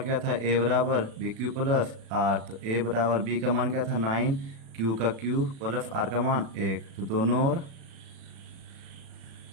था, A बराबर BQ प्लस R। तो A बराबर B का मान क्या था 9, Q का Q प्लस R का मान 1। तो दोनों ओर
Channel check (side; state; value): left; late; 36 ms